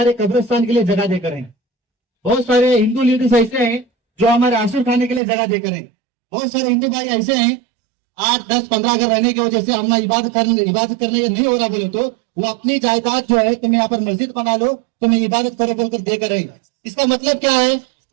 कब्रिस्तान के लिए जगह देकर हैं। बहुत सारे हिंदू लीडर्स ऐसे हैं जो हमारे आंसू खाने के लिए जगह देकर हैं। बहुत सारे हिंदू भाई ऐसे हैं 8, 10, 15 घर रहने की वजह से हम इबादत करने नहीं हो रहा बोले तो वो अपनी जायदाद जो है, तुम यहाँ पर मस्जिद बना लो, तुम्हें इबादत करो बोलकर देकर रहे। इसका मतलब क्या है,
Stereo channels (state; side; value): drops out; left; at 5.2 s